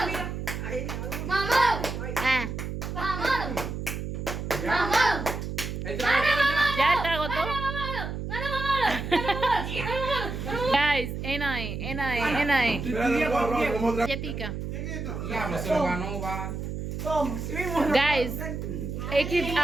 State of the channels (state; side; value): noise; right; hum, 5 dB below the sound